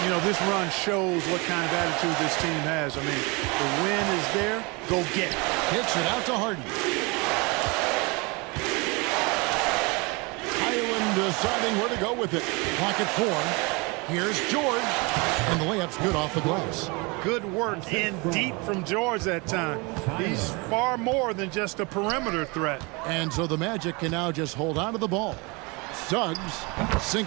you know, this run shows what kind of attitude this team has. I mean, the win is there, go get it. Kicks it out to Harden. Highland deciding where to go with it. Pocket 4. Here's George. And the layup's good off the glass. Good work in deep from George that time. He's far more than just a perimeter threat. And so the Magic can now just hold on to the ball. Suggs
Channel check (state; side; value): quieter; left; 27.9 dB